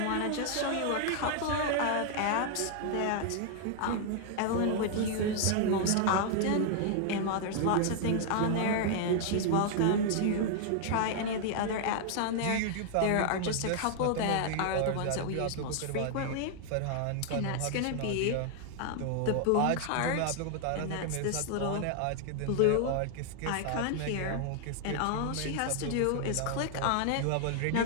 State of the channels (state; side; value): different; both; correlation 0.00